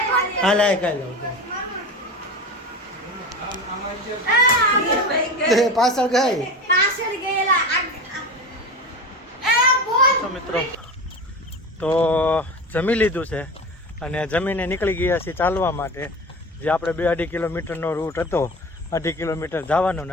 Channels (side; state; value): both; normal; correlation 0.29